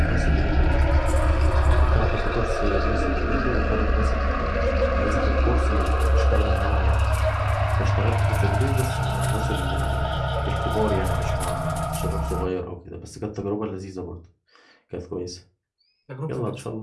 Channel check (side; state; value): both; identical; correlation 1.00